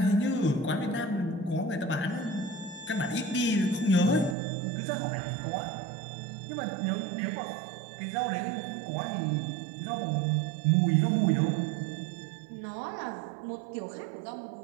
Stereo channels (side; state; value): left; drops out; at 4.4 s